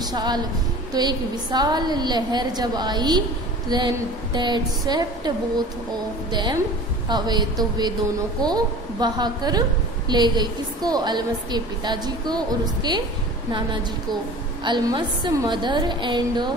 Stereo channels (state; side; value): normal; both; correlation 0.40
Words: तो एक विशाल लहर जब आई, then that swept both of them away, तो वे दोनों को बहाकर ले गई। किसको? अल्मस के पिताजी को और उसके नाना जी को। Almas mother and